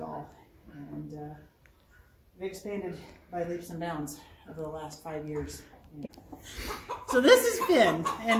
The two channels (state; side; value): identical; both; correlation 1.00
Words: all, and we've expanded by leaps and bounds over the last 5 years. So this is Finn,